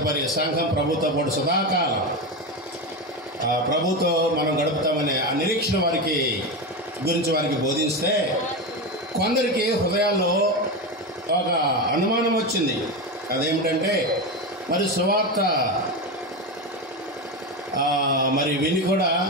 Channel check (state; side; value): normal; both; correlation 0.17